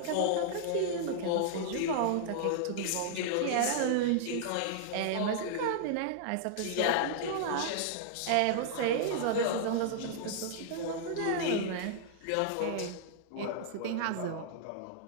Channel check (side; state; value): both; different; correlation -0.01